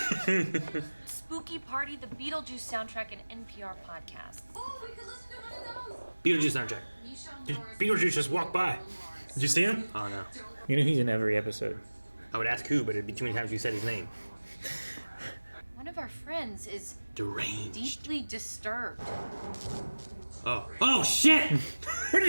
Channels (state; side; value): inverted; both; correlation -1.00